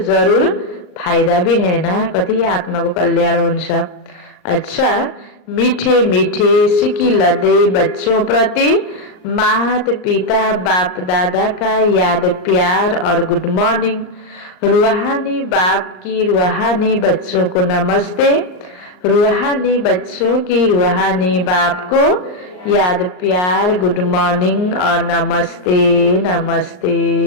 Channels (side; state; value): right; late; 39 ms